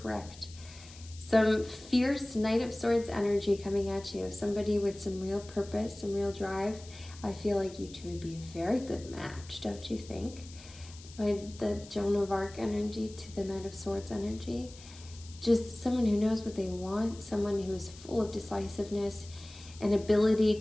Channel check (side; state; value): left; noise; hiss, 19 dB below the sound